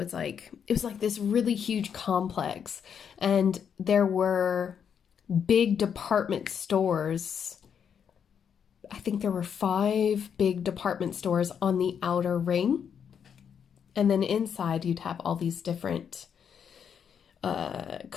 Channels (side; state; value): right; quieter; 7.6 dB